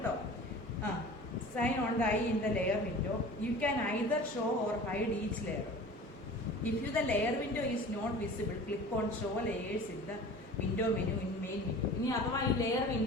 Sign on the eye in the layer window. You can either show or hide each layer. If the layer window is not visible, click on show layers in the window menu in main menu. ഇനി അഥവാ ഈ ലെയർ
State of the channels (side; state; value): both; normal; correlation 0.40